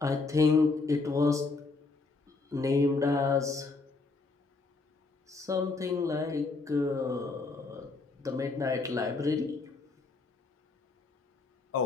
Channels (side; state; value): right; quieter; 3.8 dB